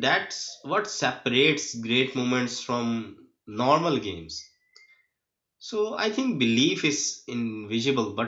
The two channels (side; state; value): both; identical; correlation 1.00